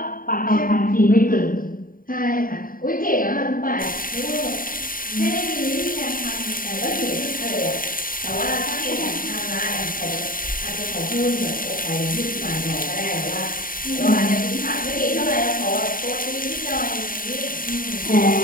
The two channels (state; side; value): late; right; 0.41 ms